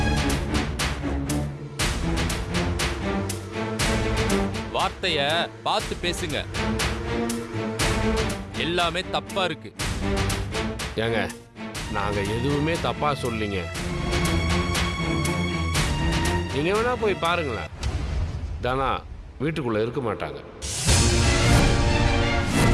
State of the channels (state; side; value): identical; both; correlation 1.00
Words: வார்த்தைய பார்த்து பேசுங்க. எல்லாமே தப்பா இருக்கு. ஏங்க, நாங்க எதுவுமே தப்பா சொல்லீங்க. நீங்க வேணா போய் பாருங்களேன், தானா வீட்டுக்குள்ள இருக்க மாட்டாங்க.